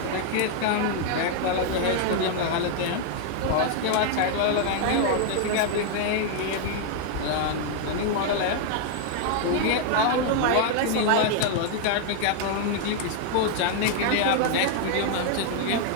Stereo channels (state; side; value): different; both; correlation 0.00